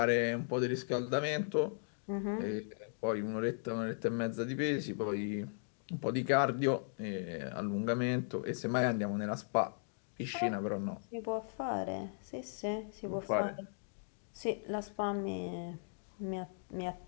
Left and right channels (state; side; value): silent; right; digital silence